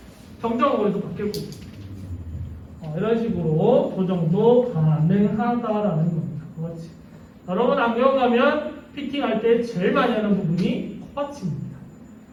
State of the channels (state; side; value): identical; both; correlation 1.00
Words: 정정하고 해서 바뀔 거고 이런 식으로 조정도 가능하다라는 겁니다. 코받침. 여러분 안경 가면 피팅할 때 제일 많이 하는 부분이 코받침입니다.